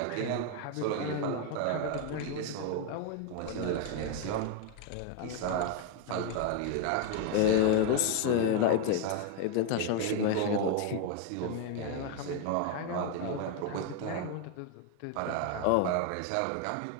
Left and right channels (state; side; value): different; both; correlation 0.01